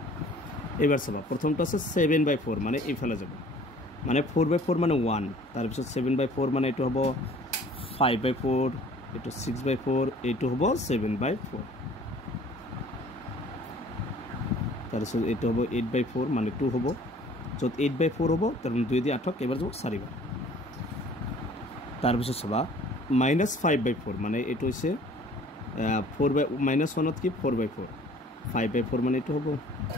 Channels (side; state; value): both; normal; correlation 0.52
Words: এবাৰ চাবা প্ৰথমটো আছে 7/4 মানে এইফালে যাব মানে 4/4 মানে 1 তাৰ পিছত 7/4 মানে এটো হ'ব 5/4 এটো 6/4 এটো হ'ব 7/4 তাৰ পিছত এটো হ'ব 8/4 মানে 2 হ'ব যত 8/4 হ'ব তাৰ মানে 2 দি 8 এবাৰ যাব 4 বাৰ তাৰ পিছত চাবা -5/4 মানে এটো হৈছে 1 কি 4/4 5/4 মানে এটো হ'ব